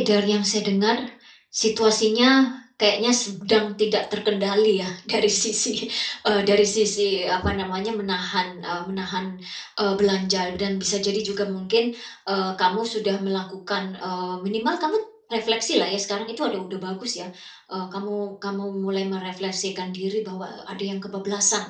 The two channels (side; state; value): both; identical; correlation 1.00